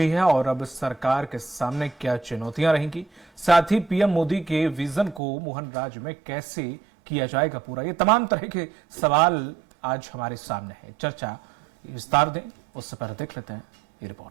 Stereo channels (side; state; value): left; drops out; at 5.2 s